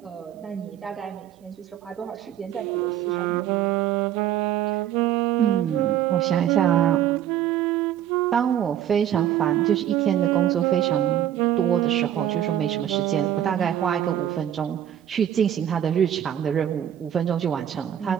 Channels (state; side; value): quieter; left; 10.8 dB